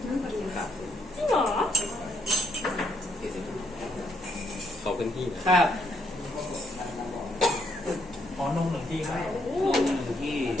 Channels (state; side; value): normal; both; correlation 0.75